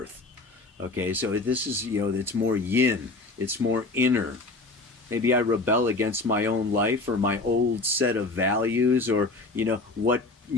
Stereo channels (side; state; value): right; quieter; 3.2 dB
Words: Okay, so this is, it's more yin, it's more inner. Maybe I rebel against my own life or my old set of values, or, what,